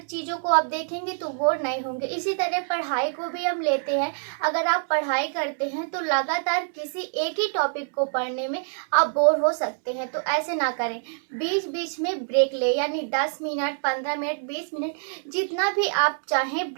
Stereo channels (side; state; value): left; silent; digital silence